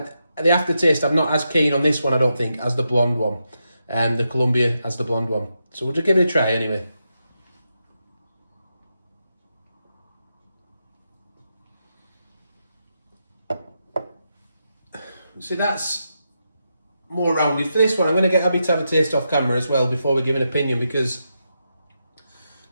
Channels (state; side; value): inverted; both; correlation -0.85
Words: the aftertaste, I'm not as keen on this one, I don't think, as the blonde one. The Colombia as the blonde one. So we'll just give it a try anyway. See, that's more rounded. For this one, I'm going to get Abby to have a taste off camera as well before we give an opinion, because